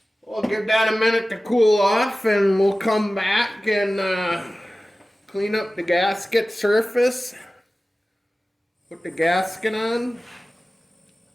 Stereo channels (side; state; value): both; normal; correlation 0.96